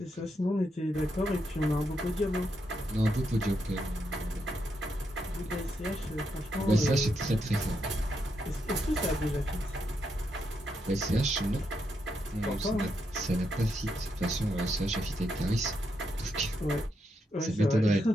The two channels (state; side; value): normal; both; correlation 0.81